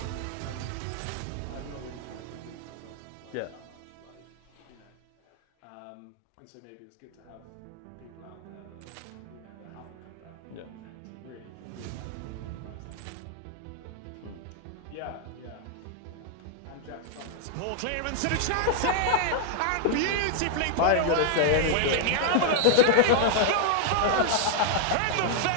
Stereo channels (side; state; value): both; different; correlation 0.00